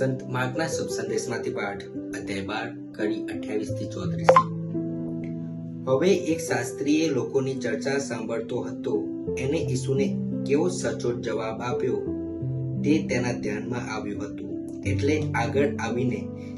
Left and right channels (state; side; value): identical; both; correlation 1.00